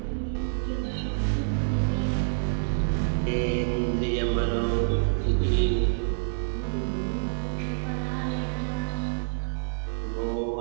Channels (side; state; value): left; silent; digital silence